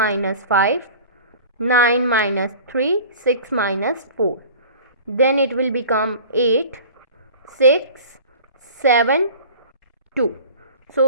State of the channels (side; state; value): both; inverted; correlation -0.41